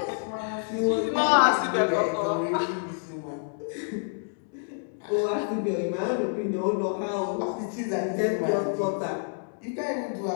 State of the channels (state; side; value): silent; right; digital silence